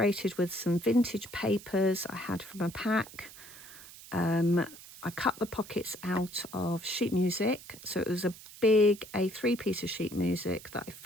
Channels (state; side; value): noise; right; hiss, 17 dB below the sound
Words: with some vintage papers I had from a pack. I cut the pockets out of sheet music, so it was a big A3 piece of sheet music that I